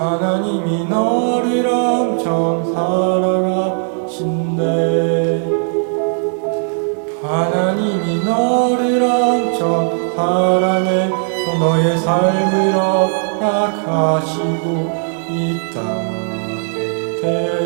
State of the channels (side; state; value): left; silent; digital silence